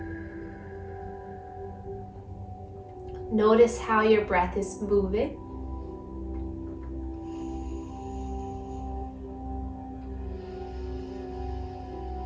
Notice how your breath is moving.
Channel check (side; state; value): both; identical; correlation 1.00